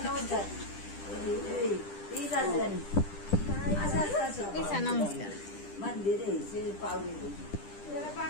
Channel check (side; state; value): right; late; 10 ms